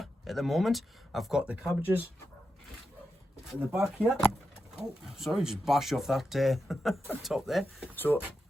at the moment. I've got the cabbages in the back here. Oh, sorry, just bashed off that top there. So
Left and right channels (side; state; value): both; normal; correlation 0.88